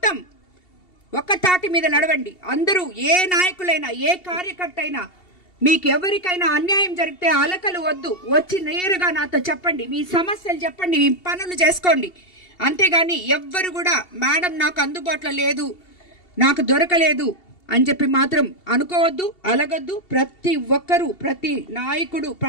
ఒక్క తాటి మీద నడవండి. అందరూ ఏ నాయకులైనా ఏ కార్యకర్త అయినా మీకు ఎవరికైనా అన్యాయం జరిగితే అలకలు వద్దు, వచ్చి నేరుగా నాతో చెప్పండి, మీ సమస్యలు చెప్పండి, మీ పనులు చేసుకోండి. అంతేగాని ఎవ్వరు కూడా మేడం నాకు అందుబాటులో లేదు, నాకు దొరకలేదు అని చెప్పి మాత్రం అనుకోవద్దు, అలగొద్దు. ప్రతి ఒక్కరూ, ప్రతి నాయకుడు,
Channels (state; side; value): late; right; 2.7 ms